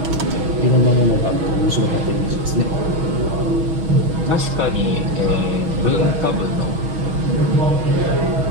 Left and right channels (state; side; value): late; left; 6.2 ms